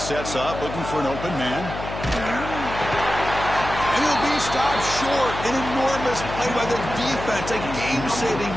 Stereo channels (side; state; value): left; noise; hum, 8 dB below the sound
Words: up, looking for an open man. And he'll be stopped short. An enormous play by the defense. A game-saving